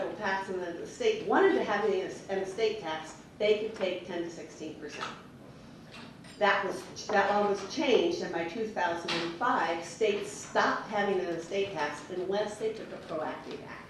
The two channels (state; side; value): identical; both; correlation 1.00